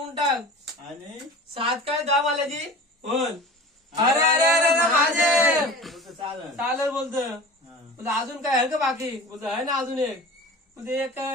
टाक. आणि 7 काय 10 माल्याची बोल. अरे अरे अरे अरे महादेव. तुझं चालेल. चालेल बोलतं. हा. बोलतं अजून काय आहे का बाकी? बोलतं आहे ना अजून एक. म्हणजे एक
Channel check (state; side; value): normal; both; correlation 0.37